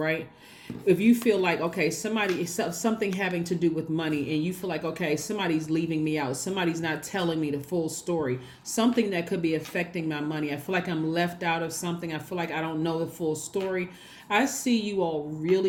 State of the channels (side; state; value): both; identical; correlation 1.00